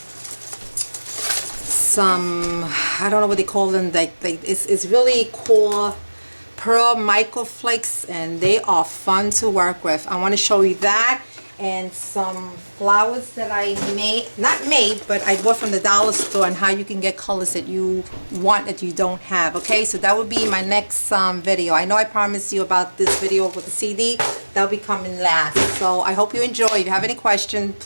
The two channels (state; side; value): inverted; both; correlation -1.00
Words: I don't know what they call them, it's really cool pearl microflakes, and they are fun to work with. I want to show you that, and some flowers that I but I bought from the dollar store, and how you can get colors that you want that you don't have. Okay, so that would be my next video. I know I promised you about this video with the CD. That'll be coming last. So I hope you enjoy. If you have any questions,